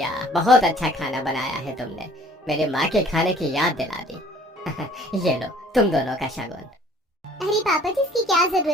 बहुत अच्छा खाना बनाया है तुमने, मेरे माँ के खाने की याद दिला दी। ये लो तुम दोनों का शगुन। अरे पापा जी इसकी क्या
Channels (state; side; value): normal; both; correlation 0.54